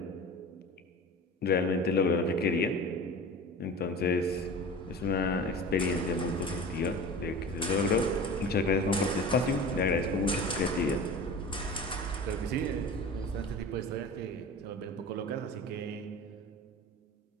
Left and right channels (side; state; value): both; normal; correlation 0.35